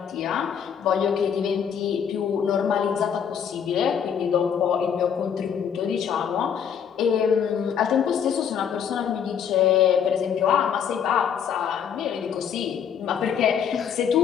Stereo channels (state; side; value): quieter; right; 7.9 dB